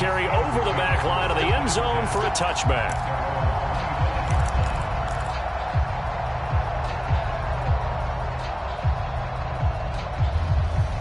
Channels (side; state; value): both; identical; correlation 1.00